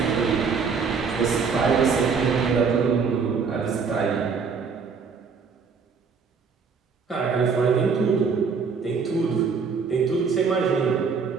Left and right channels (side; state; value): left; quieter; 5.5 dB